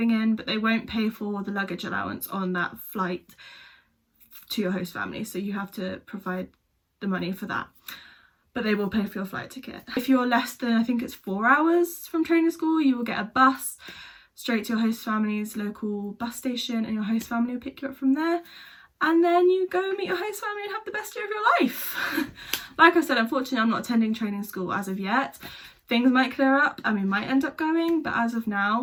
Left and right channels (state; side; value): identical; both; correlation 1.00